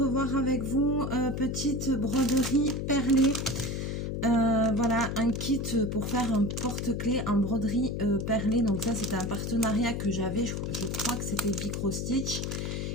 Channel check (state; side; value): noise; left; hum, 3 dB below the sound